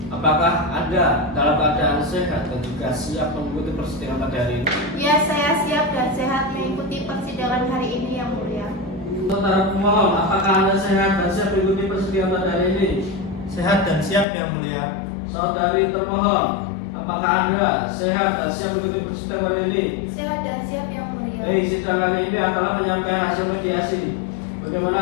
apakah Anda dalam keadaan sehat dan juga siap mengikuti persidangan pada hari ini? Ya, saya siap dan sehat mengikuti persidangan hari ini yang mulia. Saudara pemohon, apakah Anda sehat dan siap mengikuti persidangan pada hari ini? Sehat dan siap yang mulia. Saudari termohon, apakah Anda sehat dan siap mengikuti persidangan hari ini? Sehat dan siap yang mulia. Baik, sidang hari ini adalah penyampaian hasil mediasi.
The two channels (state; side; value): drops out; right; at 14.2 s